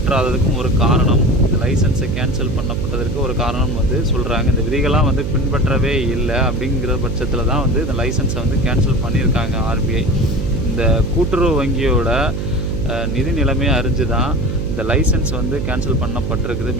ஒரு காரணம், இந்த லைசன்ஸை கேன்சல் பண்ணப்பட்டதற்கு ஒரு காரணம் வந்து சொல்கிறாங்க. இந்த விதிகள்லாம் வந்து பின்பற்றவே இல்லை அப்படிங்கிற பட்சத்தில் தான் வந்து இந்த லைசன்ஸை வந்து கேன்சல் பண்ணியிருக்காங்க ஆர்பிஐ. இந்த கூட்டுறவு வங்கியோட நிதி நிலைமையை அறிஞ்சு தான் இந்த லைசன்ஸ் வந்து கேன்சல் பண்ணப்பட்டிருக்குது.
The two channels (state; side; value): noise; right; hum, 4 dB below the sound